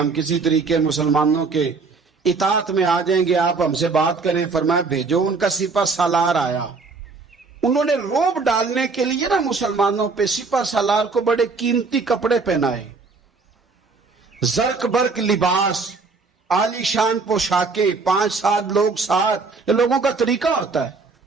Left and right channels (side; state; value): left; quieter; 4.3 dB